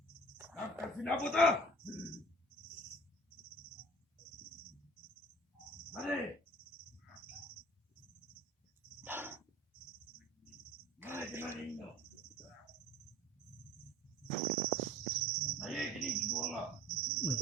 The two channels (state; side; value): normal; both; correlation 0.45